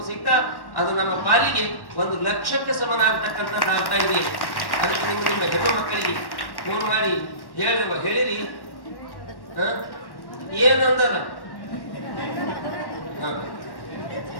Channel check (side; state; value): right; late; 1.1 ms